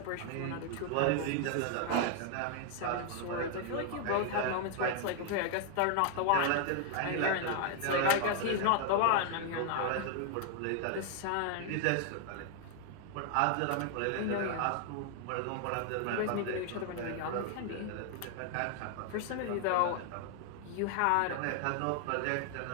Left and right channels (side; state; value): both; different; correlation 0.00